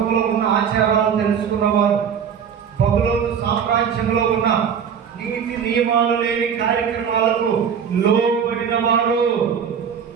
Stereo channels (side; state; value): left; quieter; 7.5 dB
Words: ఉన్న ఆచారాలు తెలుసుకున్నవారు, బబులోను సామ్రాజ్యంలో ఉన్న నీతి నియమాలు లేని కార్యక్రమాలకు లోబడిన వారు,